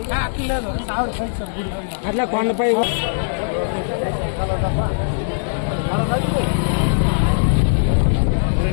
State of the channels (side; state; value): right; silent; digital silence